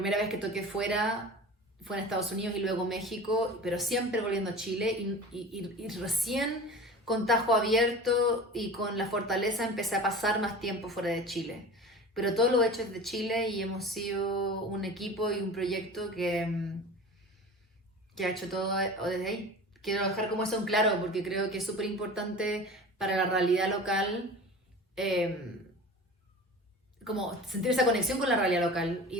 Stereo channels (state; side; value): normal; both; correlation 0.37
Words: vez que toqué fuera fue en Estados Unidos y luego México, pero siempre volviendo a Chile, y recién con tajo abierto y con la fortaleza empecé a pasar más tiempo fuera de Chile. Pero todo lo he hecho desde Chile y hemos sido un equipo y un proyecto que ha hecho todo desde ahí. Quiero dejar como eso en claro, porque creo que es súper importante para la realidad local, eh, como sentir esa conexión con la realidad local